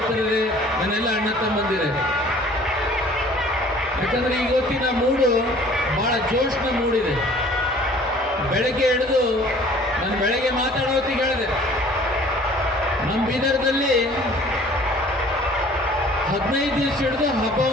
ನನ್ನೆಲ್ಲ ಅಣ್ಣ ತಮ್ಮಂದಿರೇ. ಯಾಕಂದರೆ ಇವತ್ತಿನ ಮೂಡು ಭಾಳ ಜೋಶ್ನ ಮೂಡಿದೆ. ಬೆಳಗ್ಗೆ ಹಿಡಿದು ನಾನು ಬೆಳಗ್ಗೆ ಮಾತಾಡೋ ಹೊತ್ತಿಗೆ ಹೇಳಿದೆ, ನಮ್ಮ ಬೀದರ್ದಲ್ಲಿ 15 ದಿವಸ ಹಿಡಿದು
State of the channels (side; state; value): both; normal; correlation 0.51